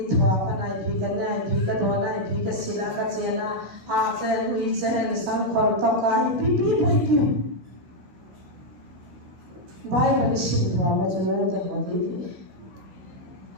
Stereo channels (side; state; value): left; late; 16 ms